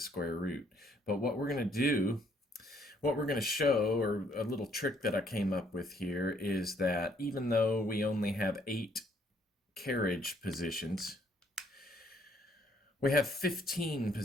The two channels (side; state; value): both; normal; correlation 0.67